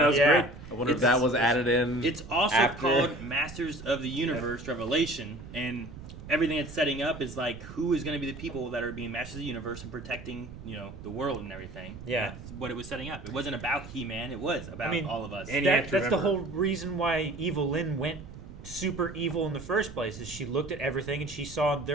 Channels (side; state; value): right; noise; rumble, 14 dB below the sound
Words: was great. I wonder if that was added in. It's also after. called Masters of the Universe Revelation, and everything it's setting up is like who is going to be the people that are being Masters of the Universe and protecting, the world and everything. Yeah. And that's what it was setting up. It wasn't about He-Man. It was about all of us. And that's the whole reason why Evelyn went super evil in the first place. Is she looked at everything and she saw